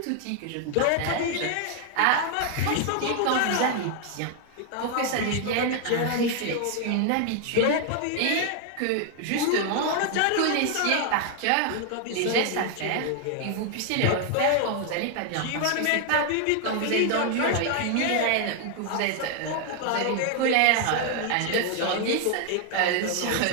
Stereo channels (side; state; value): both; different; correlation 0.00